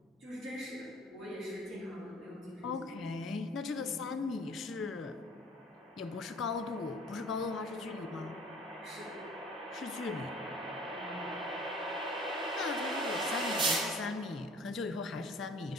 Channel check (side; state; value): both; normal; correlation 0.49